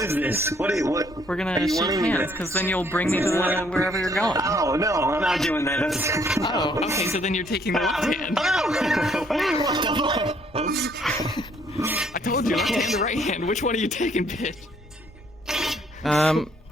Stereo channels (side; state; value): both; normal; correlation 0.65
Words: is this? What? We're gonna shake hands, because then you'll bring me to wherever you're going. Oh no, I'm not doing that. That's... Oh, okay, so then you're taking the left hand. What the fuck? I told you, left hand or right hand. Which one are you taking, bitch? Alright,